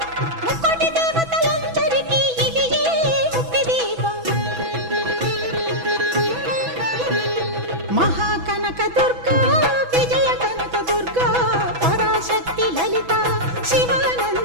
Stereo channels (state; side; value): late; left; 6.1 ms